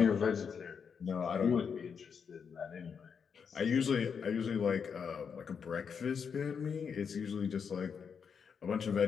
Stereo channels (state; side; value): quieter; right; 6.5 dB